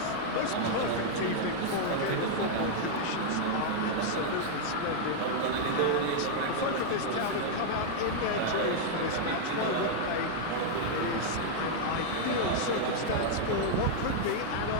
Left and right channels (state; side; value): different; both; correlation -0.01